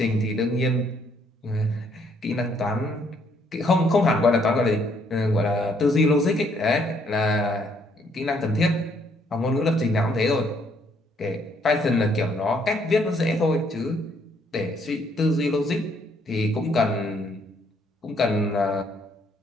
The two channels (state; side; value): normal; both; correlation 0.68